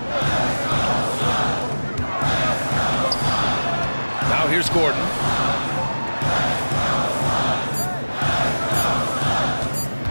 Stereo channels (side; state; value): both; inverted; correlation -1.00